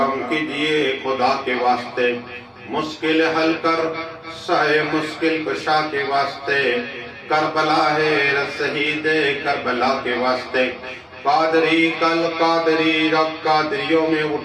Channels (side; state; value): both; identical; correlation 1.00